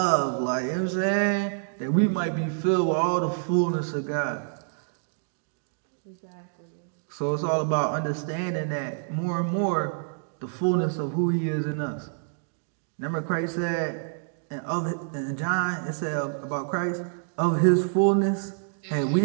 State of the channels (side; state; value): left; silent; digital silence